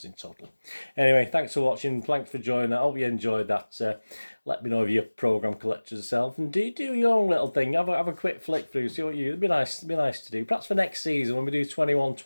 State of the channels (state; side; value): inverted; both; correlation -1.00